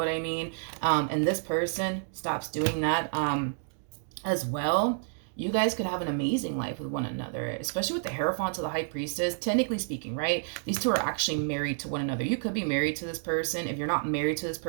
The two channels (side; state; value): left; silent; digital silence